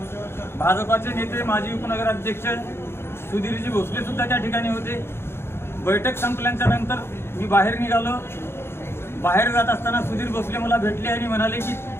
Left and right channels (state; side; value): late; right; 0.12 ms